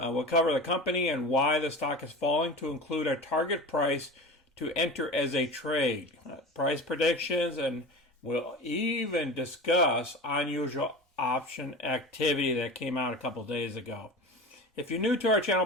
cover the company and why the stock is falling, to include a target price to enter as a trade, price predictions, and we'll even discuss unusual option activity that came out a couple days ago. If you're new to our channel,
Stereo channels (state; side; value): normal; both; correlation 0.32